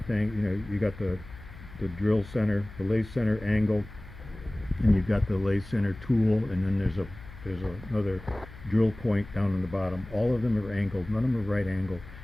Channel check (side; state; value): left; noise; hum, 16 dB below the sound